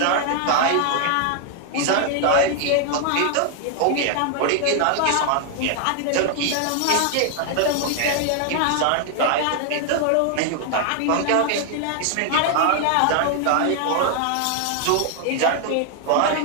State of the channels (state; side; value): different; both; correlation 0.00